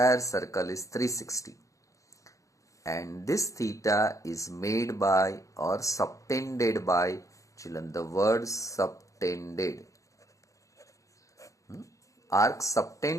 circle is 360. And this theta is made by or subtended by, children, the word subtended. Arc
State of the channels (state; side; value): late; right; 0.16 ms